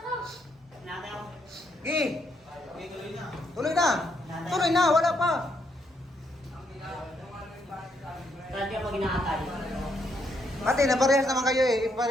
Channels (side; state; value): both; normal; correlation 0.75